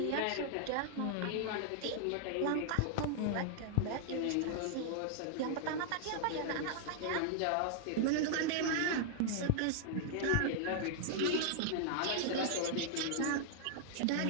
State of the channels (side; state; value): both; different; correlation -0.01